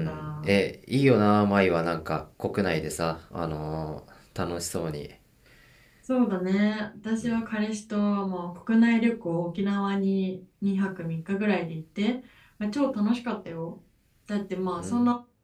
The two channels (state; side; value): identical; both; correlation 1.00